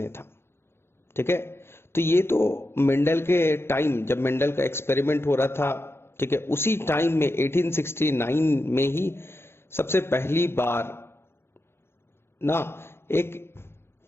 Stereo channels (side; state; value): right; late; 0.12 ms